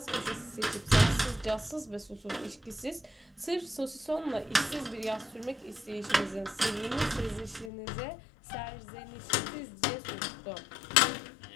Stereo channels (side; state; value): right; drops out; at 7.7 s